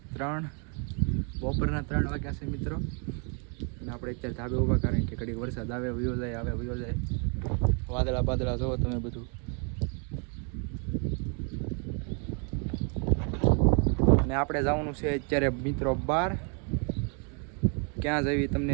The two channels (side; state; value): left; quieter; 38.3 dB